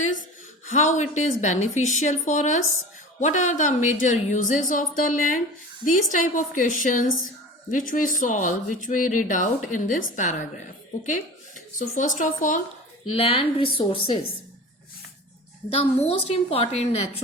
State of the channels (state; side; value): normal; both; correlation 0.36